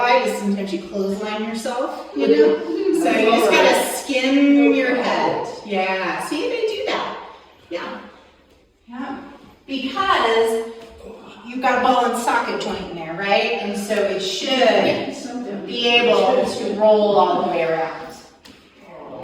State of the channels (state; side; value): identical; both; correlation 1.00